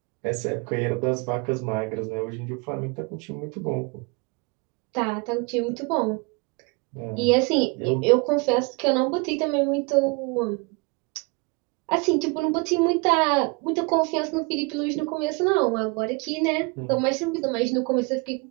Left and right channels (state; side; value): quieter; left; 29.3 dB